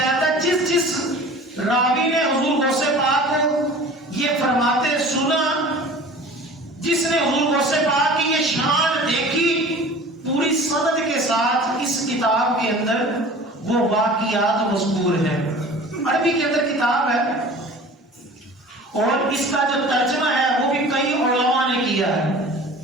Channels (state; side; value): normal; both; correlation 0.42